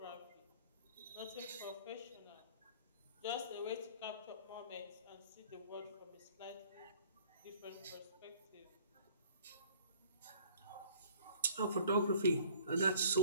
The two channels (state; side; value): inverted; both; correlation -0.53